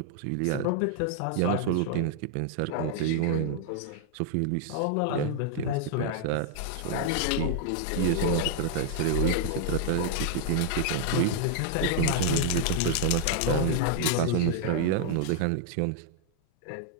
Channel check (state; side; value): different; both; correlation 0.00